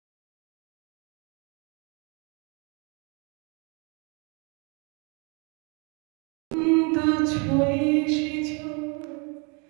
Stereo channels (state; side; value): quieter; left; 33.8 dB